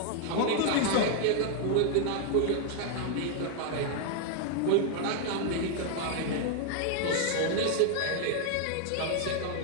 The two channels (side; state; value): both; different; correlation 0.00